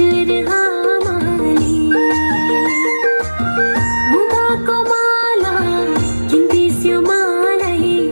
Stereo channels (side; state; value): both; inverted; correlation -1.00